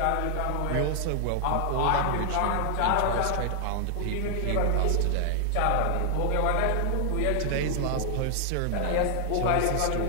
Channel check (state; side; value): different; both; correlation 0.00